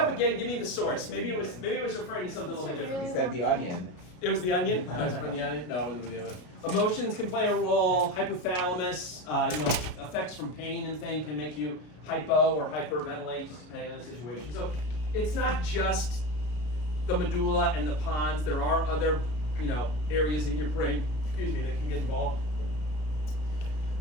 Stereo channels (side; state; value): right; late; 33 ms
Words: again. Give me the source. Maybe it was referring to something a little bit different. He said the onion. It was the onion. No, it was from the onion. No, it wasn't the other. Emotions can play a role. Hypothalamus, effects from pain and things can make you hypo or hyperventilate, just depending on the situation. So it's not just the medulla and the pons. There are other, areas in your brain, that can get involved.